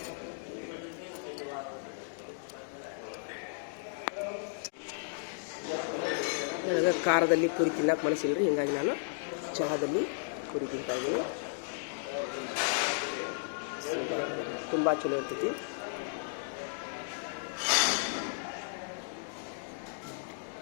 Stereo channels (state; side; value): silent; right; digital silence